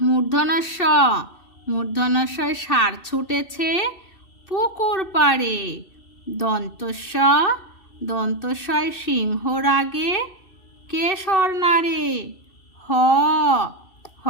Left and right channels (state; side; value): late; right; 2.7 ms